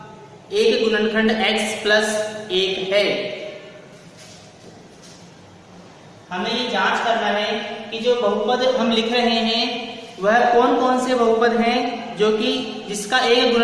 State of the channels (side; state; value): both; identical; correlation 1.00